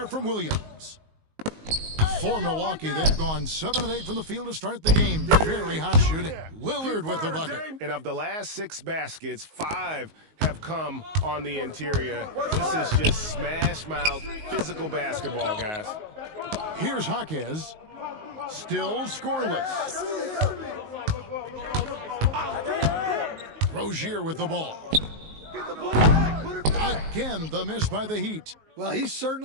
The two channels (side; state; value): left; late; 19 ms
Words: from Williams. For Milwaukee, they've gone 7 of 8 from the field to start the game. Very hot shooting. Lillard with the bucket. And of the last 6 baskets, 5 have come on the interior. This is just smash mouth, physical basketball, guys. Here's Jaquez. Still scoreless. Rozier with the ball. Again, the miss by the Heat. Well, he